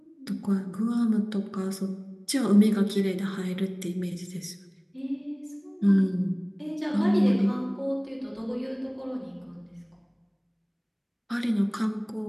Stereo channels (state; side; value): identical; both; correlation 1.00